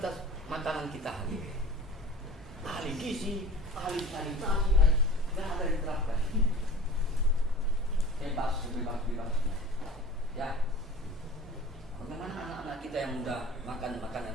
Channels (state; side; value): normal; both; correlation 0.39